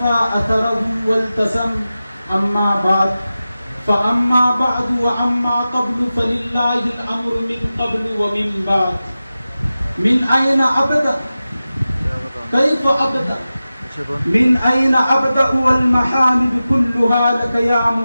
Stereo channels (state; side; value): inverted; both; correlation -0.94